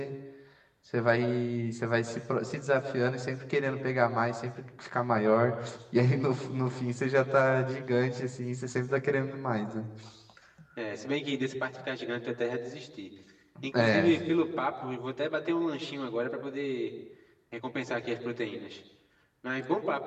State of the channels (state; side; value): identical; both; correlation 1.00